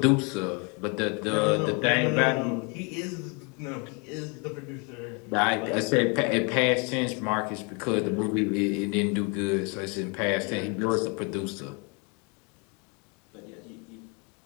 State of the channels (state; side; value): quieter; right; 33.0 dB